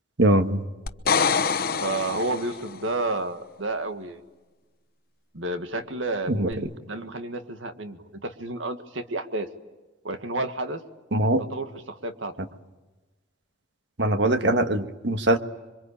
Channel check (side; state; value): both; normal; correlation 0.02